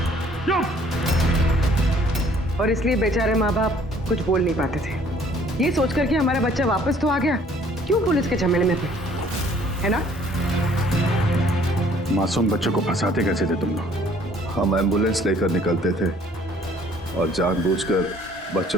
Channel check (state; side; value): normal; both; correlation 0.58